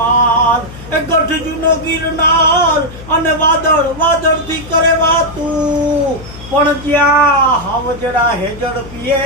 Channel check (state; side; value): noise; left; hum, 15 dB below the sound